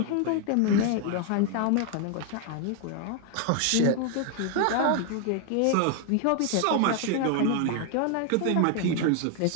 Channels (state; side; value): different; both; correlation 0.00